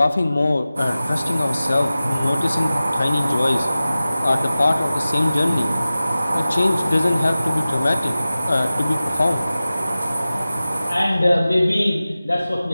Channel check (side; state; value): both; inverted; correlation -0.96